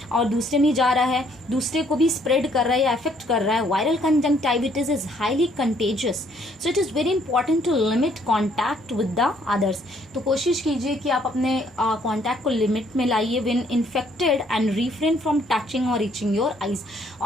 और दूसरे में जा रहा है, दूसरे को भी स्प्रेड कर रहा है या अफेक्ट कर रहा है। Viral conjunctivitis is highly contagious, so it is very important to limit contact with the others. तो कोशिश कीजिए कि आप अपने कॉन्टैक्ट को लिमिट में लाइए when infected and refrain from touching और रीचिंग योर आईज,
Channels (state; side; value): normal; both; correlation 0.65